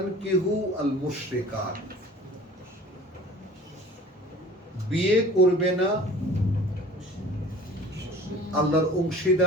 আল মুশরিকাত, বিয়ে করবে না আল্লাহর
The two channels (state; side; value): normal; both; correlation 0.45